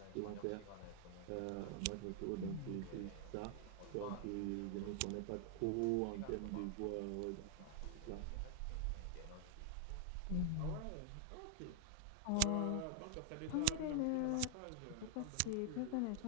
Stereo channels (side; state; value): both; different; correlation 0.00